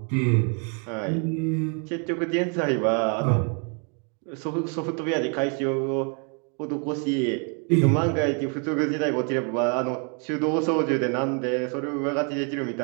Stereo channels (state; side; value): quieter; left; 38.9 dB